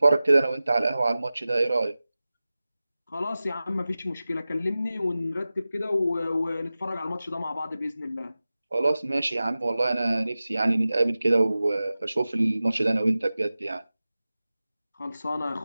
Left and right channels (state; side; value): inverted; both; correlation -0.95